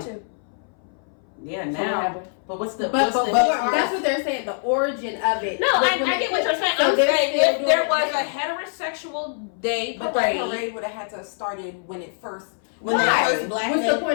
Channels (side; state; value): right; silent; 60 dB below the other